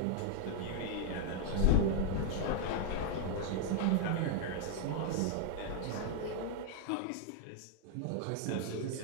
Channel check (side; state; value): both; different; correlation 0.00